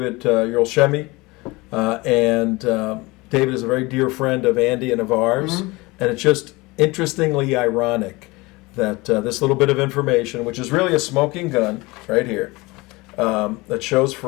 Yerlshemy. And David is a very dear friend of Andy and of ours. Mm-hmm. And it's just interestingly ironic that this little bit of information, which is really a smoking gun right here, that shows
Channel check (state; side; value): quieter; right; 23.2 dB